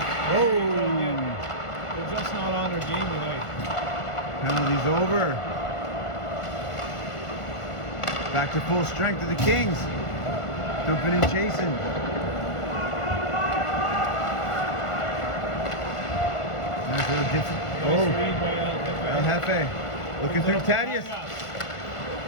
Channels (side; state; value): right; late; 1.5 ms